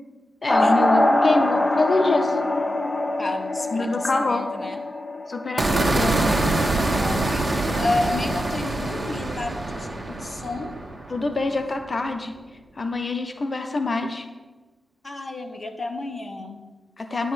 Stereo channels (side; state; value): both; normal; correlation 0.90